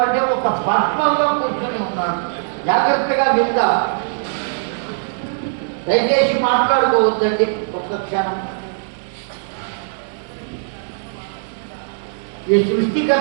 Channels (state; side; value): silent; left; digital silence